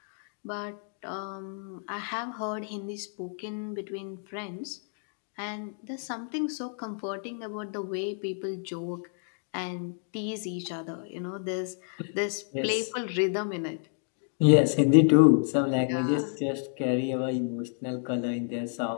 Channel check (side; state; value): right; silent; 58 dB below the other